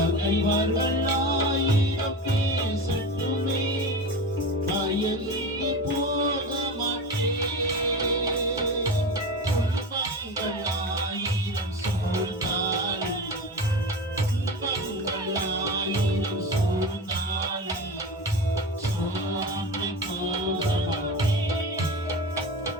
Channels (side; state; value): both; normal; correlation 0.27